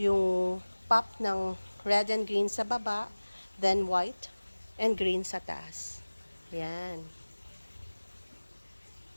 pop ng red and green sa baba, then white and green sa taas. Ayan.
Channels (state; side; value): inverted; both; correlation -1.00